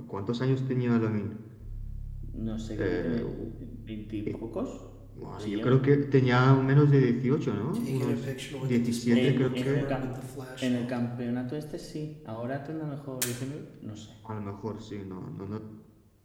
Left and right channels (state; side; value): identical; both; correlation 1.00